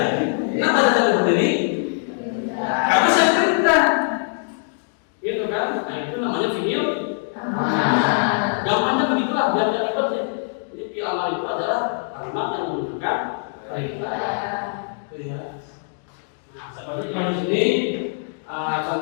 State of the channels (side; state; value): right; silent; digital silence